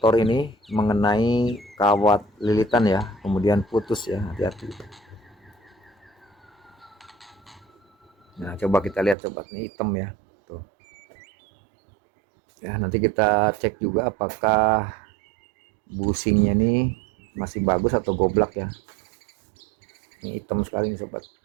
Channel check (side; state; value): left; drops out; at 9.2 s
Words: ini mengenai kawat lilitan ya, kemudian putus ya, hati-hati. Nah coba kita lihat sobat, ini hitam ya tuh ya. Nanti kita cek juga apakah busingnya ini masih bagus atau goblak ya. Ini hitam sekali nih sobat.